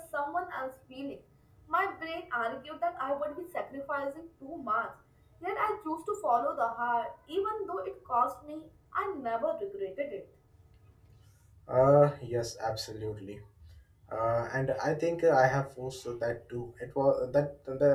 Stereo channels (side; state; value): both; identical; correlation 1.00